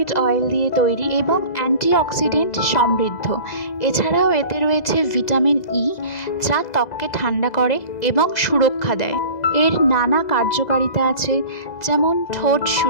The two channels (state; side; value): late; right; 2.0 ms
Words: অয়েল দিয়ে তৈরি এবং অ্যান্টিঅক্সিডেন্ট সমৃদ্ধ। এছাড়াও এতে রয়েছে ভিটামিন ই, যা ত্বককে ঠান্ডা করে এবং সুরক্ষা দেয়। এর নানা কার্যকারিতা আছে, যেমন ঠোঁট